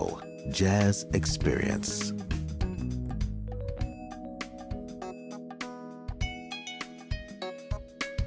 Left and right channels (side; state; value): both; identical; correlation 1.00